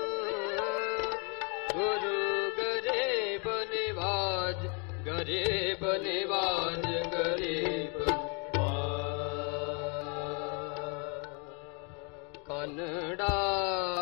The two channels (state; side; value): quieter; right; 35.1 dB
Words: गुरु गरीब निवाज गरीब निवाज गरीब कन्नड़ा